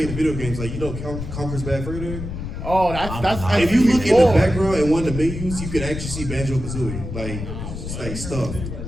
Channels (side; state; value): left; noise; rumble, 7 dB below the sound